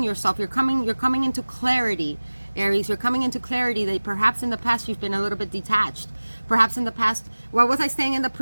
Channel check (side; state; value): both; inverted; correlation -1.00